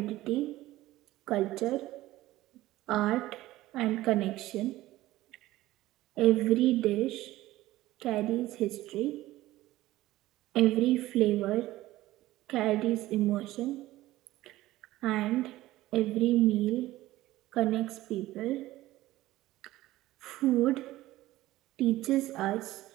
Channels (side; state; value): left; quieter; 16.5 dB